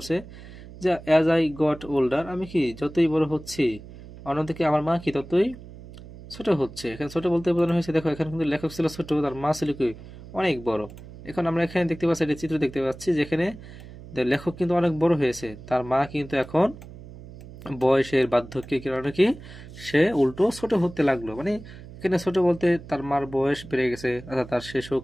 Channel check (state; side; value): noise; right; hum, 16 dB below the sound